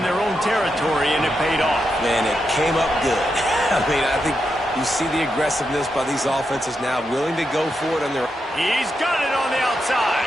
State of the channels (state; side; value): normal; both; correlation 0.85